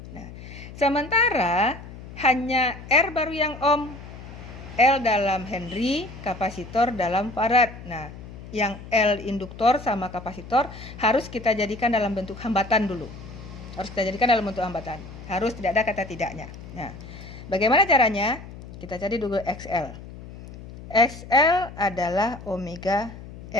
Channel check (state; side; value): noise; left; hum, 14 dB below the sound